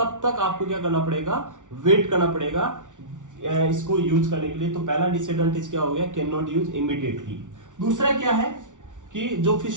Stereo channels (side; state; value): left; late; 0.87 ms